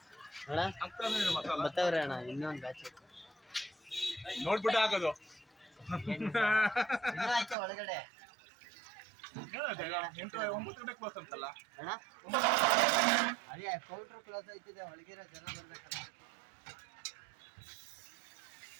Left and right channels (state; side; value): drops out; left; at 7.6 s